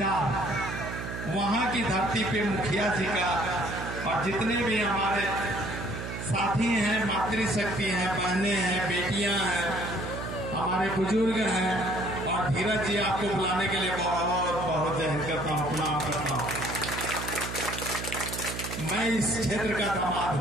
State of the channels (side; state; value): right; noise; hum, 7 dB below the sound